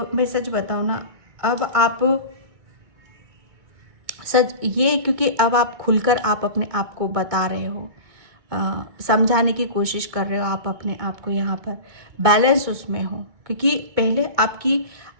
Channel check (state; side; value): late; left; 2.0 ms